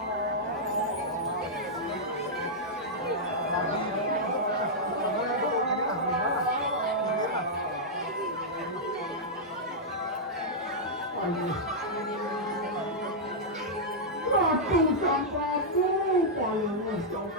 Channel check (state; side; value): normal; both; correlation -0.07